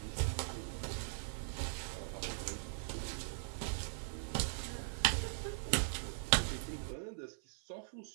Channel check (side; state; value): left; silent; 51 dB below the other